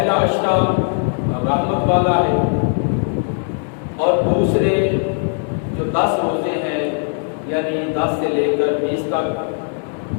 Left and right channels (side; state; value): right; silent; 67 dB below the other